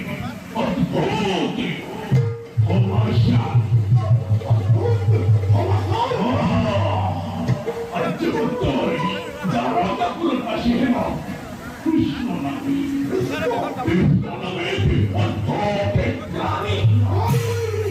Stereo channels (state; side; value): identical; both; correlation 1.00